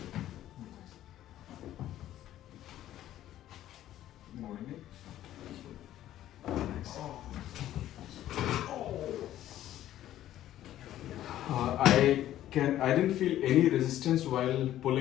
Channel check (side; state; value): right; quieter; 12.9 dB